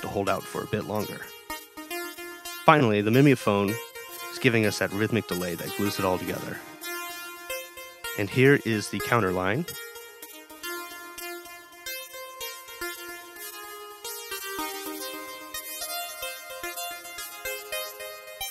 to hold out for a bit longer. Finally, the mimeophone is giving us that rhythmic delay that glues it all together. And here is the counter line.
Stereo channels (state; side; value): identical; both; correlation 1.00